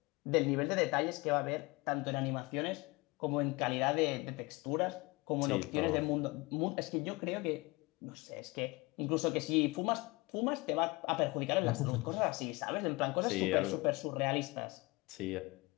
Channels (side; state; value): right; quieter; 24.3 dB